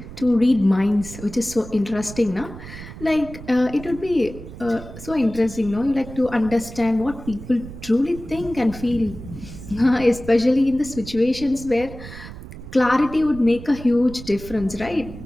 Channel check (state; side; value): noise; right; rumble, 13 dB below the sound